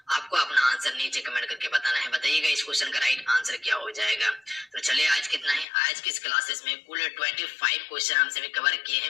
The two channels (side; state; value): right; drops out; at 5.7 s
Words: आपको अपना आंसर नीचे कमेंट करके बताना है। बताइएगा इस क्वेश्चन का राइट आंसर क्या हो जाएगा। तो चलिए आज कितना है, आज की इस क्लासेस में कुल 25 क्वेश्चन हम सभी कवर किए